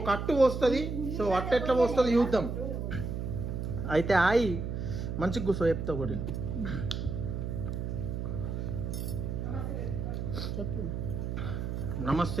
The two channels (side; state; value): right; noise; hum, 3 dB below the sound